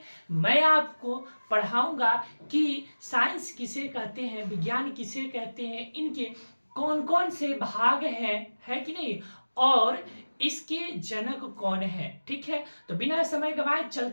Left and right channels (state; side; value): inverted; both; correlation -1.00